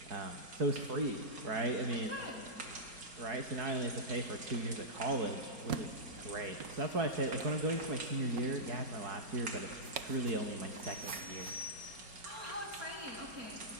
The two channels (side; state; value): left; late; 4.3 ms